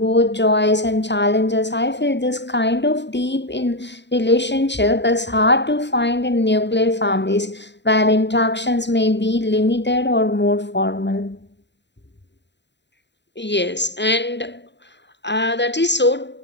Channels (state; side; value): late; right; 0.51 ms